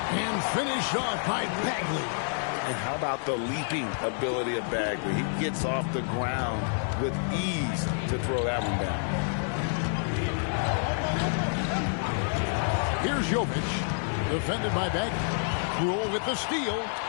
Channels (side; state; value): right; silent; 59 dB below the other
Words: And finished off by Bagley. And how about the leaping ability of Bagley? He gets off the ground with ease to throw that one down. Here's Jovic. Defended by Bagley. Poole with the steal.